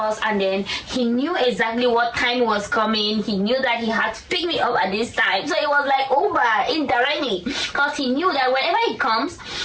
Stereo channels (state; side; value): identical; both; correlation 1.00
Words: and then he knew exactly what time was coming. He knew that he had to pick me up at this time. So it was like Uber indirectly, because he knew that whenever he comes,